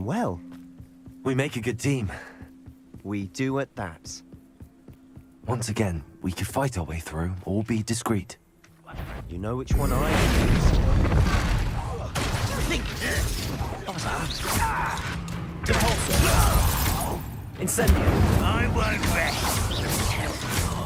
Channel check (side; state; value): both; identical; correlation 1.00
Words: well. We make a good team. We do at that. Once again, we could fight our way through, or be discreet. You know which one I used. Incendio. I won't rest.